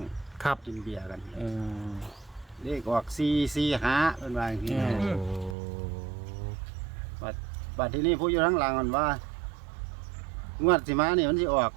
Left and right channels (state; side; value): drops out; left; at 5.6 s